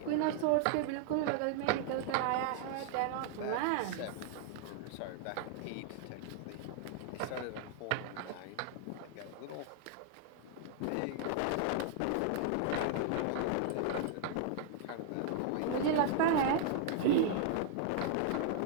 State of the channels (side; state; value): both; different; correlation -0.01